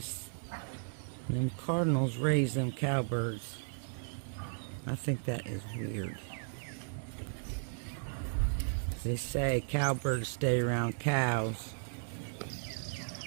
And them cardinals raise them cowbirds. I think that is weird. They say cowbirds stay around cows.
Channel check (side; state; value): left; silent; digital silence